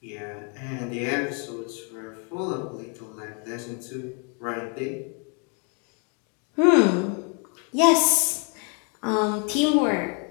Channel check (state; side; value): quieter; right; 38.0 dB